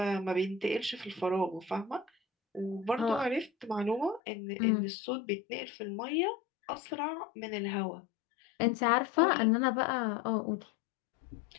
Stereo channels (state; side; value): drops out; right; at 4.2 s